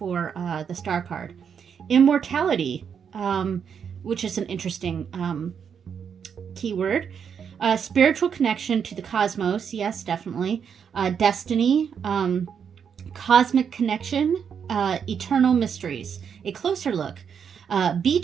the star card. Immortality, which is an interesting keyword. Spiritual connection to the cosmos. Yes, definitely. Destiny, cosmic connection, eternal mysteries. A closer look.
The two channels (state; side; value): quieter; left; 7.3 dB